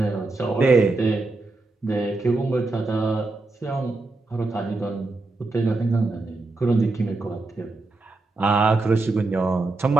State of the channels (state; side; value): quieter; left; 3.3 dB